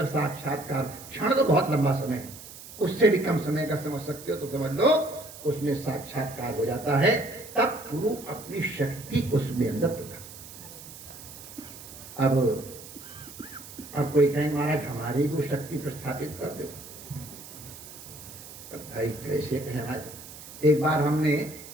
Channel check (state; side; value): noise; right; hiss, 15 dB below the sound